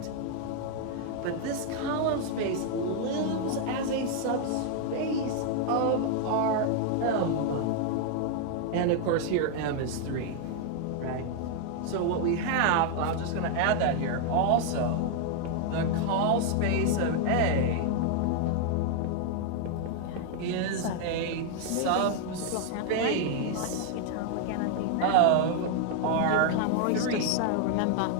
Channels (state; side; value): different; both; correlation 0.00